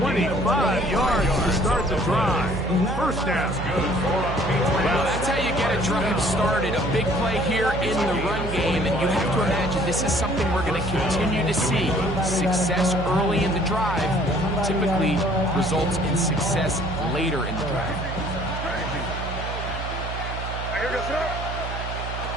yards to start the drive? First down. Well, that's how you get a drive started. A big play here in the run game, and you have to imagine this is something we're going to continue to see. Success early in the drive typically results in success later in the drive.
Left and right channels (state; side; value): noise; right; hum, 7 dB below the sound